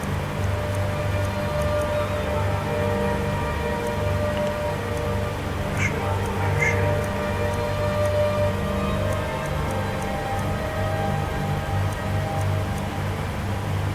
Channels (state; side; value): identical; both; correlation 1.00